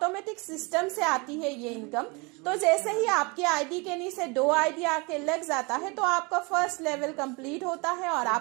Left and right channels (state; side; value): quieter; left; 28.8 dB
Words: सिस्टम से आती है ये इनकम, तो जैसे ही आपके आईडी के नीचे 2 आईडी आके लग जाता है, तो आपका फर्स्ट लेवल कंप्लीट होता है और